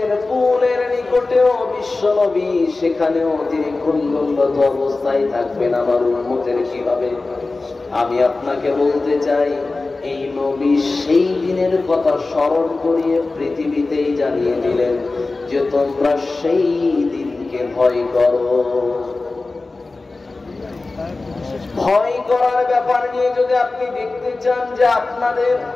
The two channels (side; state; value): right; quieter; 3.5 dB